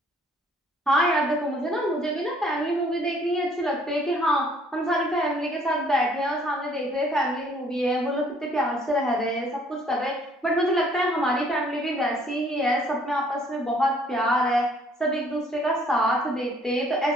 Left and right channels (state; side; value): normal; both; correlation 0.60